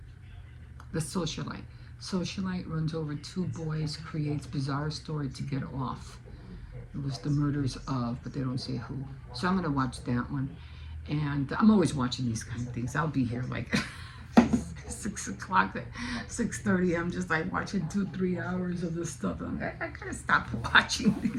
The socialite. Socialite runs over two boys, creates bizarre story to get off. It was the murders of, but they don't say who. So I'm gonna watch that one. And I'm always watching these kind of things. I'll be here like 6 o'clock, 6:30. I'm just like watching 2-3 hours of this stuff. I'm like, I gotta stop watching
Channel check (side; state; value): both; identical; correlation 1.00